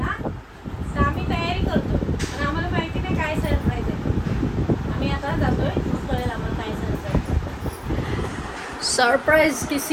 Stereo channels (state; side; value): identical; both; correlation 1.00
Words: तर आम्ही तयारी करतो पण आम्हाला माहिती नाही काय सरप्राईज आहे. आम्ही आता जातोय, कळेल आम्हाला काय सरप्राईज. सरप्राइज